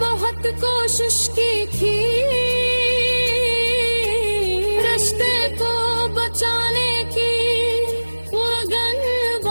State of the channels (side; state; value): both; inverted; correlation -1.00